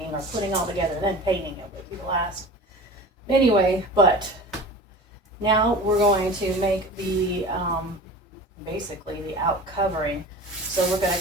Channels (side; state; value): both; normal; correlation 0.36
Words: or putting all together, then painting it would be the last. Anyway, but now we're going to make the, basically the out covering. So we're going